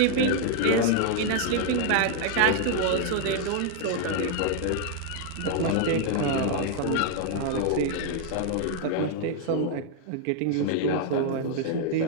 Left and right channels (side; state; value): both; different; correlation 0.00